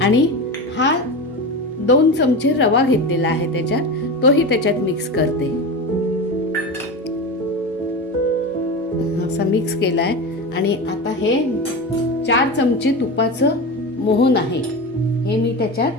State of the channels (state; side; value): normal; both; correlation 0.24